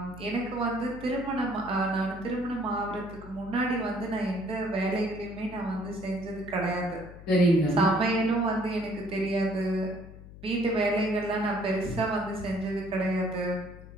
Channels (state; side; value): noise; left; hum, 16 dB below the sound